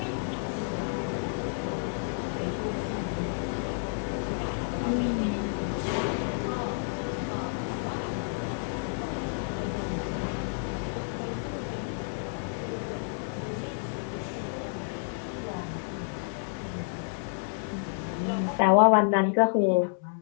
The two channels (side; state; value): right; silent; 58 dB below the other